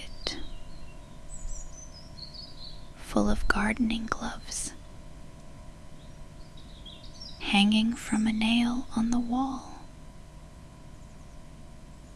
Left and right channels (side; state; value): both; identical; correlation 1.00